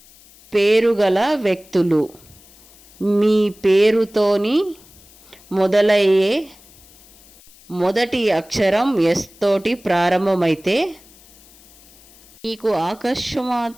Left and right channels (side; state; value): left; noise; hiss, 26 dB below the sound